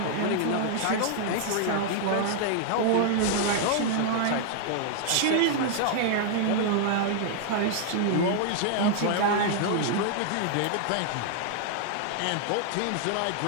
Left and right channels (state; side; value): different; both; correlation 0.00